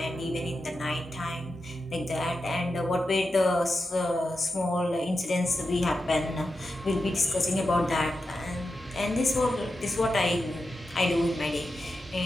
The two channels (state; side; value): normal; both; correlation 0.89